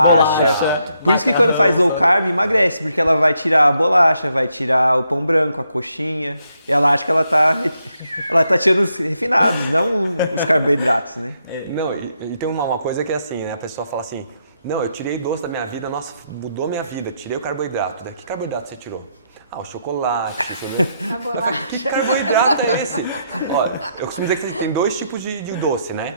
Por isso que quando faz low carb, emagrece, porque ela vai tirar a bolacha, vai tirar o pão branco, a coxinha, e ela acha que ela tá tirando os refinados, não os carboidratos, né? Não, e tem uma coisa que é assim, né? A pessoa fala assim, não, eu tirei doce da minha vida, nossa, mudou minha vida, tirei o carboidrato. Que carboidrato você tirou? O chocolate, A bolacha. Que carboidrato é esse? Olha, eu costumo dizer que tem dois tipos de doce,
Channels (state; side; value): inverted; both; correlation -0.77